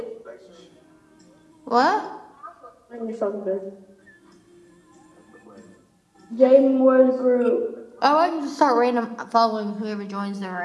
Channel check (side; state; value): both; identical; correlation 1.00